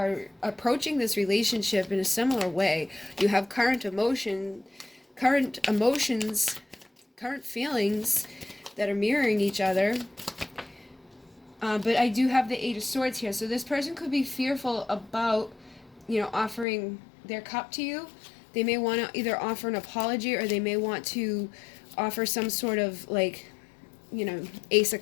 approaching this relationship in a similar way. You have current emotions, current feelings that are mirroring each other. But I do have the Eight of Swords here. So this person could be fearful about, you know, offering their cup to you. They may want to either offer an apology, or they may want to offer some sort of like, you know, Ace of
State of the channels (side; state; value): right; drops out; at 16.7 s